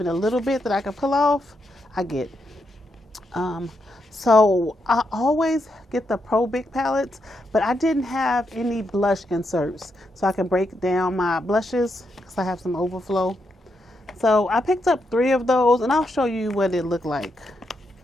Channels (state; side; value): normal; both; correlation 0.82